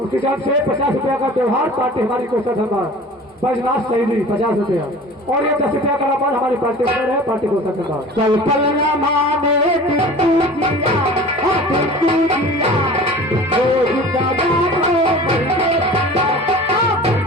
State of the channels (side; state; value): both; normal; correlation 0.41